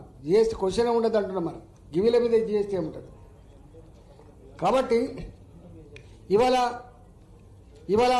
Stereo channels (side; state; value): both; identical; correlation 1.00